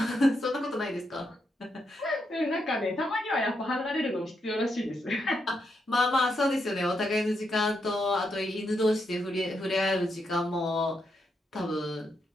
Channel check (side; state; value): both; normal; correlation 0.81